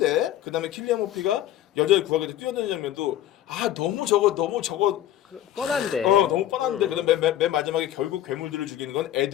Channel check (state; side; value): quieter; right; 12.3 dB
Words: 그다음에 킬리안 머피가 여자를 구하게 돼 뛰어드는 장면도 너무 저거 뻔한데. 너무 뻔한데. 그다음에 맨 마지막에 결국 괴물들을 죽이는 건